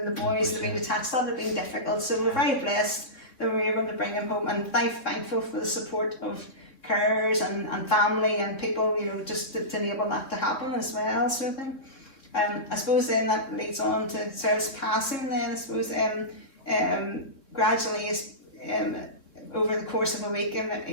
the boys would have been detached. That would have been difficult, so we're very blessed that we were able to bring him home, and thankful for the support of carers and family and people, you know, just to enable that to happen as well, sort of thing. I suppose then that leads on to Cyril's passing then. I suppose gradually over the course of a week,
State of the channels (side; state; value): right; late; 3.6 ms